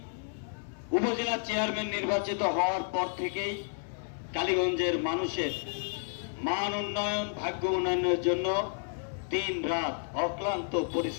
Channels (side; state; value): right; silent; 57 dB below the other